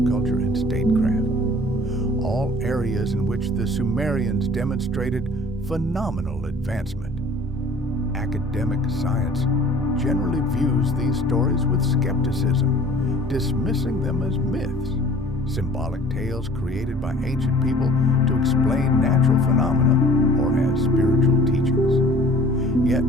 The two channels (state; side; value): normal; both; correlation 0.49